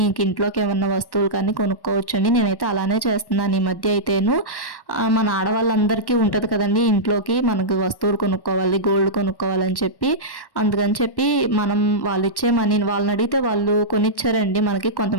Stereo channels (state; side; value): late; right; 1.1 ms